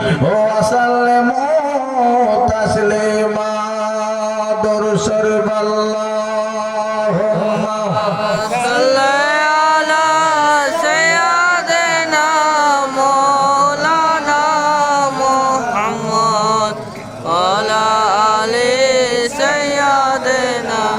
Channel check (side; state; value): both; identical; correlation 1.00